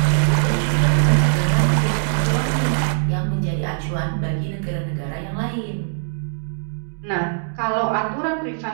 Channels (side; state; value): left; silent; digital silence